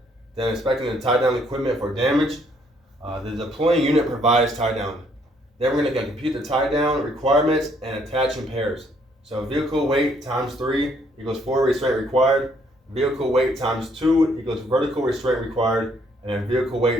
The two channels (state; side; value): normal; both; correlation 0.67